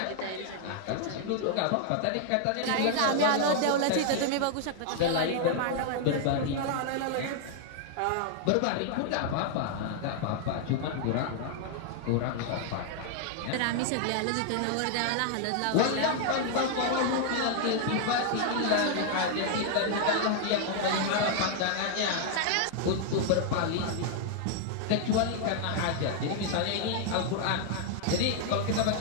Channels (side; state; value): both; different; correlation 0.00